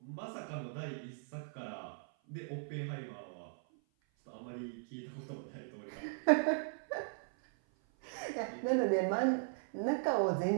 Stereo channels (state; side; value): silent; left; 52 dB below the other